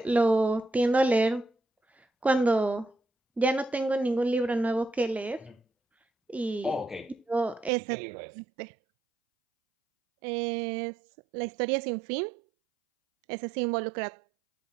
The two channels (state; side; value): drops out; left; at 7.7 s